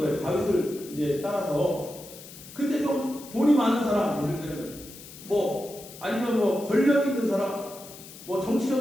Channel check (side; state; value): left; noise; hiss, 16 dB below the sound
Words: 다윗을 이제 따라서. 근데 좀 돈이 많은 사람, 예를 들면 뭐 아니면 뭐 권력 있는 사람, 뭐